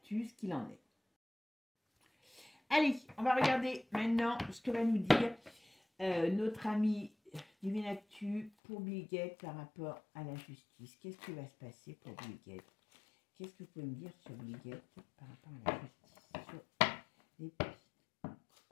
ce qu'il en est. Allez, on va regarder maintenant ce que va nous dire notre ami Divinactus pour Bill Gates par rapport à la justice. Qu'est-ce qui va se passer pour Bill Gates? Qu'est-ce que vous pouvez me dire sur Bill Gates par rapport à la justice, sur les pistes?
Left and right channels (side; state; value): right; drops out; at 8.5 s